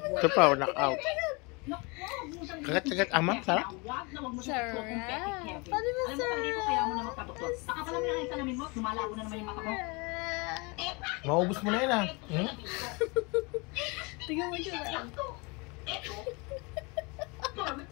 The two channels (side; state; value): right; quieter; 28.8 dB